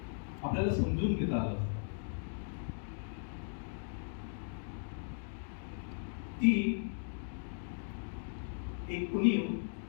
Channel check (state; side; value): silent; right; digital silence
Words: आपल्याला समजून घेता आलं. ती एक उणीव